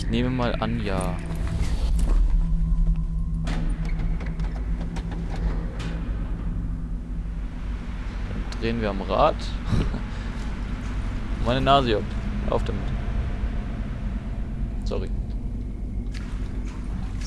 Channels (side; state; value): both; identical; correlation 1.00